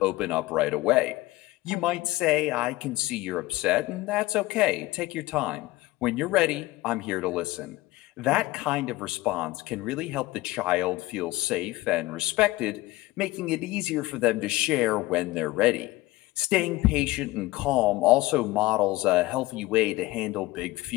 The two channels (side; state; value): right; quieter; 19.1 dB